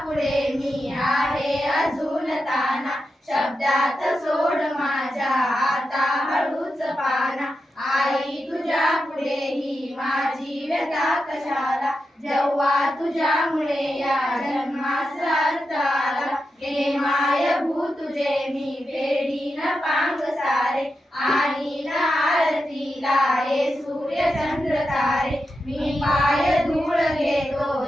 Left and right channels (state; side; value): normal; both; correlation 0.89